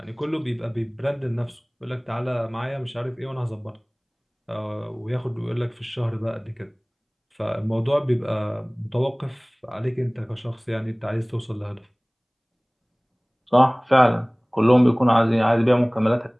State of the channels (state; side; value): identical; both; correlation 1.00